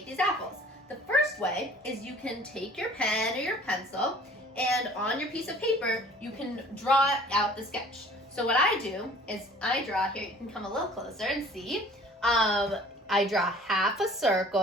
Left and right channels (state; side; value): normal; both; correlation 0.50